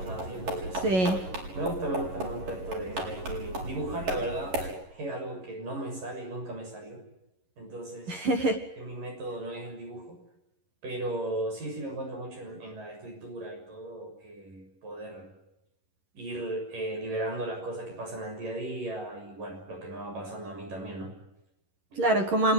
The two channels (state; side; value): late; left; 11 ms